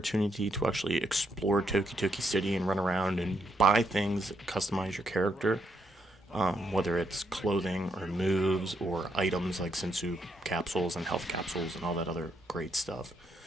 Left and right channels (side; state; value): both; normal; correlation 0.77